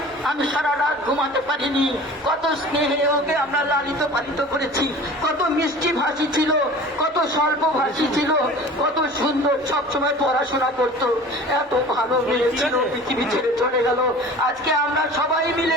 আমি সারা রাত ঘুমাতে পারিনি। কত স্নেহে ওকে আমরা লালিত পালিত করেছি, কত মিষ্টি ভাষী ছিল, কত স্বল্প ভাষী ছিল, কত সুন্দর, সবসময় পড়াশোনা করতো, এত ভালো মেয়ে ছিল, পৃথিবী ছেড়ে চলে গেল। আজকে আমরা সবাই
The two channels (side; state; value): both; normal; correlation 0.41